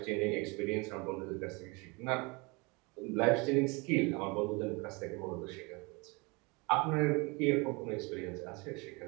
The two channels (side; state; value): left; quieter; 27.8 dB